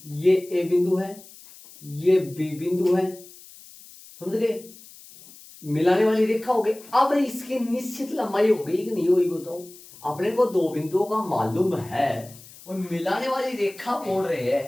ये ए बिंदु है ये बी बिंदु है समझ गए मिलाने वाली रेखा हो गई। अब इसकी निश्चित लंबाई हो गई कि नहीं हुई बताओ अपने को दो बिंदुओं का मालूम है और मिलाने वाली रेखा बोल रहे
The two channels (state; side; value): noise; left; hiss, 20 dB below the sound